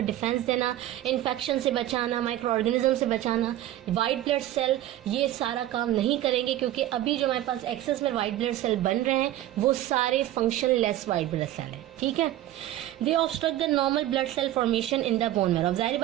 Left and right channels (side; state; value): left; quieter; 13.8 dB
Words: डिफेंस देना, इन्फेक्शन से बचाना, माइक्रो ऑर्गेनिज्म से बचाना। व्हाइट ब्लड सेल ये सारा काम नहीं करेंगे, क्योंकि अभी जो हमारे पास एक्सेस में व्हाइट ब्लड सेल बन रहे हैं वो सारे functionless white blood cell है, ठीक है। They obstruct the normal blood cell formation in the bone marrow. जाहिर